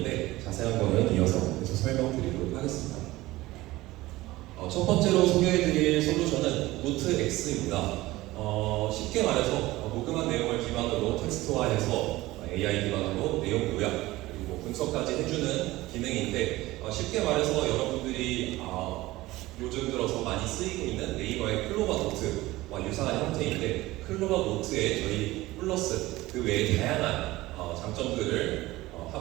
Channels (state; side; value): quieter; left; 18.4 dB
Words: 자세한 거는 이어서 계속 설명드리도록 하겠습니다. 첫 번째로 소개해드릴 솔루션은 노트 X입니다. 쉽게 말해서 녹음한 내용을 기반으로 텍스트화해서 AI 기반으로 내용 요약 그리고 분석까지 해주는 기능인데 쉽게 말해서 여러분들이 요즘 들어서 많이 쓰이고 있는 네이버의 클로바 노트와 유사한 형태인데 클로바 노트에 저희 플러스 그 외에 다양한 장점들을